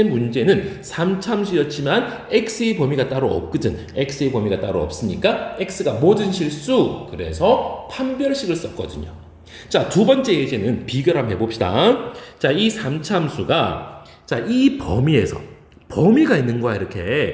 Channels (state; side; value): identical; both; correlation 1.00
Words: 문제는 3참수였지만 x의 범위가 따로 없거든. x의 범위가 따로 없으니까 x가 모든 실수. 그래서 판별식을 썼거든요. 자, 두 번째 예제는 비교를 한번 해봅시다. 자, 이 3참수가, 자, 이 범위가 있는 거야.